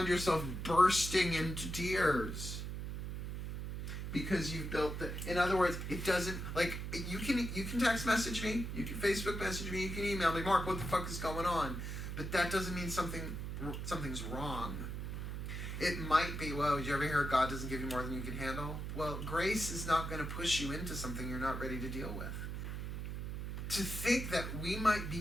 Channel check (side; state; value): right; noise; hum, 5 dB below the sound